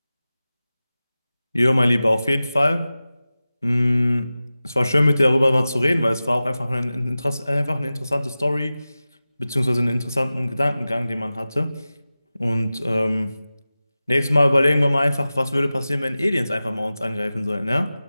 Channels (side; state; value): both; inverted; correlation -0.96